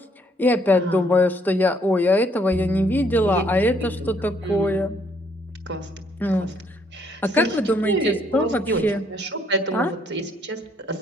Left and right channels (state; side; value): normal; both; correlation 0.68